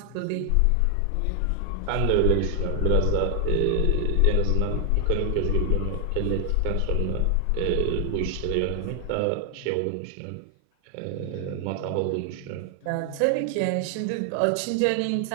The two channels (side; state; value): both; different; correlation 0.00